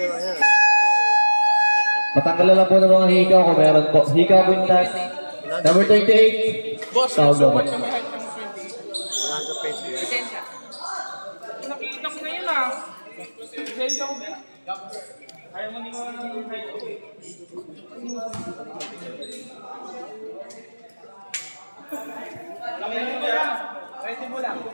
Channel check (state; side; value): inverted; both; correlation -1.00